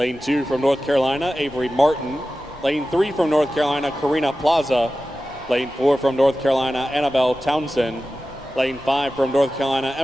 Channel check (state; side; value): noise; left; rumble, 26 dB below the sound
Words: 2 from North Carolina, Avery Martin. Lane 3 from North Carolina, Karina Plaza. Lane 4 from North Carolina, Annabelle Townsend. Lane 5 from North Carolina,